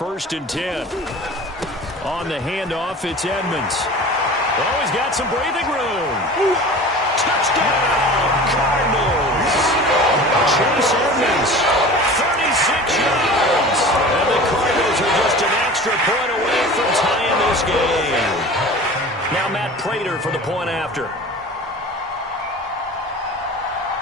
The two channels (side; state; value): both; normal; correlation 0.38